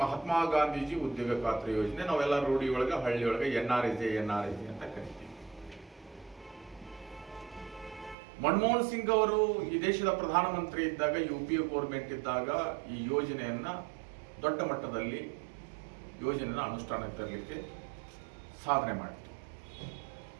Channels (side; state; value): left; drops out; at 8.2 s